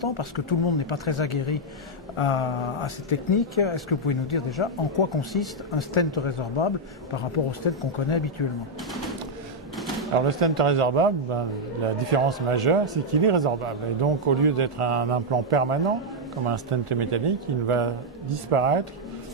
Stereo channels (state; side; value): normal; both; correlation -0.01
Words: parce que tout le monde n'est pas très aguerri à ces techniques, est-ce que vous pouvez nous dire déjà en quoi consiste un stent résorbable par rapport au stent qu'on connaît habituellement? Alors le stent résorbable, la différence majeure, c'est qu'il est résorbable. Et donc au lieu d'être un implant permanent, comme un stent métallique, il va disparaître